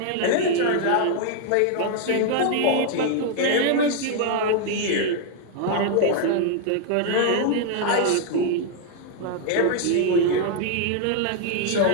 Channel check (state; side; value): different; both; correlation 0.00